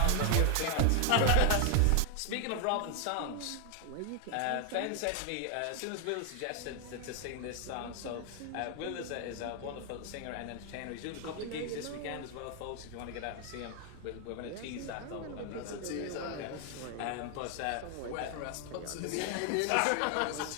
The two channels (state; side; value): different; both; correlation 0.00